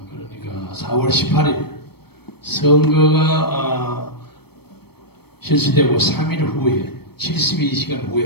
그러니까 4월 18일 선거가 실시되고 3일 후에 72시간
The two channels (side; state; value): right; late; 0.97 ms